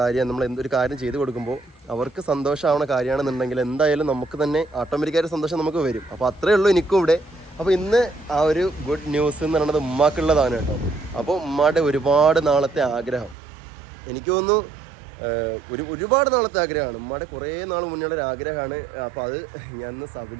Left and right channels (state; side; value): drops out; left; at 13.4 s